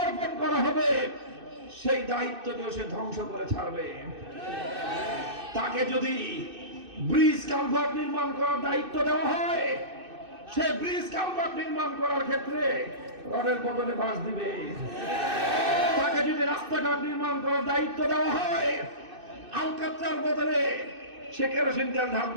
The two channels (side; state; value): left; late; 2.6 ms